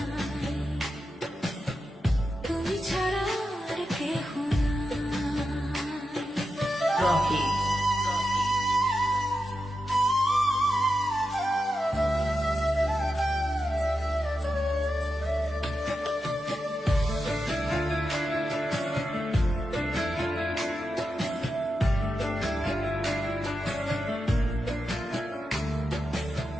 তুমি ছাড়া আর কেহ নাই। রকি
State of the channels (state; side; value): normal; both; correlation 0.89